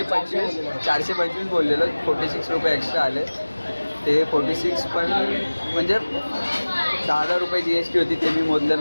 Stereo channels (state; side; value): inverted; both; correlation -1.00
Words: बोललेलो. 46 रुपये एक्स्ट्रा आले. ते 46 पण म्हणजे 10,000 रुपये GST होती, ते मी मोजलं